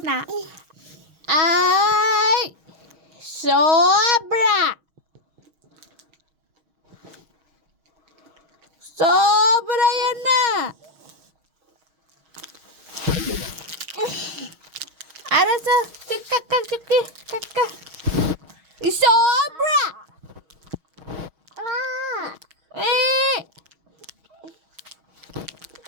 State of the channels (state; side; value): late; left; 6.3 ms